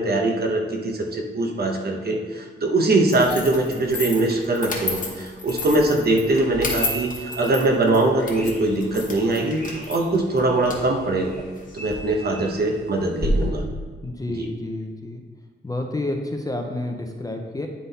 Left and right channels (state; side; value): normal; both; correlation 0.50